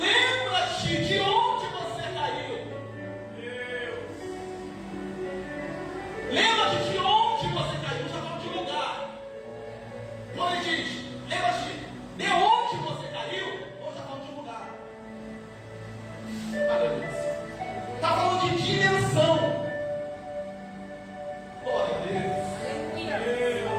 de onde você caiu. Lembra-te de onde você caiu. Já falou de lugar. Quando ele diz: lembra-te de onde você caiu, ou já falou de lugar. Aleluia. Está falando de dimensão. Glória a Deus.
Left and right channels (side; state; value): both; identical; correlation 1.00